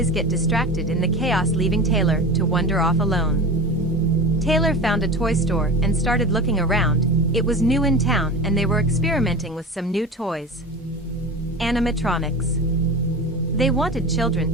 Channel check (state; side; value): normal; both; correlation 0.30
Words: get distracted in the chaos, leaving Taylor to wander off alone. Taylor found a toy store and started looking around. It was new in town and they were experimenting with some new toys. Animatronics. They wanted